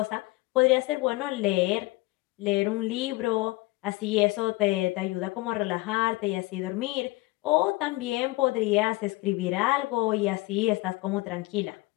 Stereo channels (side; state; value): right; quieter; 21.8 dB